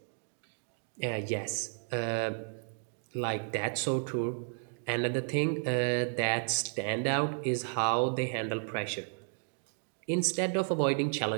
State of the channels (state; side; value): silent; left; 56 dB below the other